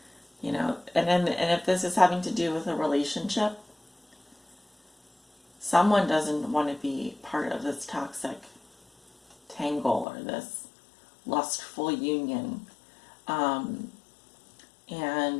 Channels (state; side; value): drops out; right; at 10.1 s